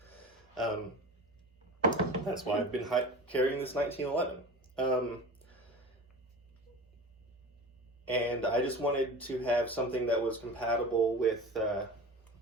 That's why I've been carrying this 1911. And I just wanted to have something that was compatible with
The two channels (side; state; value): both; normal; correlation 0.33